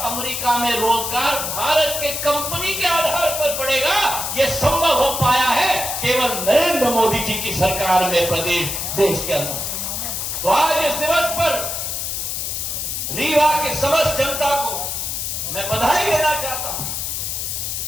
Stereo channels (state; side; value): noise; left; hiss, 3 dB below the sound